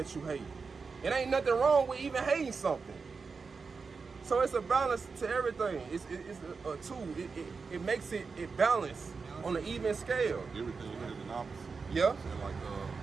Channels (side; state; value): left; quieter; 4.8 dB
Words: you hate. It ain't nothing wrong with even hating something. So it's a balance to everything. It's a tool. It makes it balanced on an even scale. Everything has an opposite. Yeah.